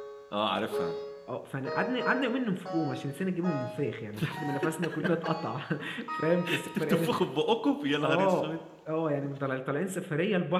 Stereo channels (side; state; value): both; identical; correlation 1.00